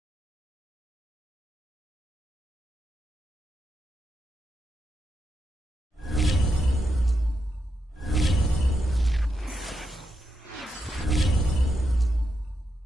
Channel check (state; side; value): normal; both; correlation 0.85